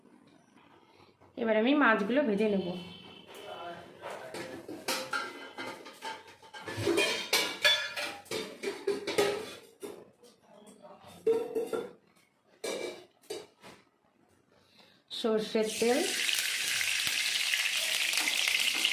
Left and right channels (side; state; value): both; identical; correlation 1.00